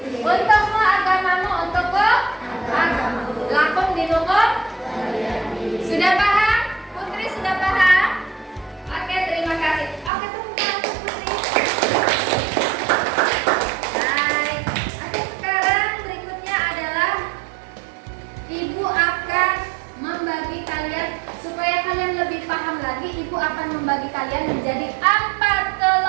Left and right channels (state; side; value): drops out; left; at 10.1 s